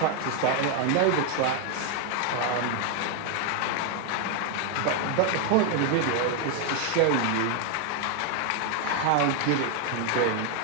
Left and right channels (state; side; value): different; both; correlation 0.01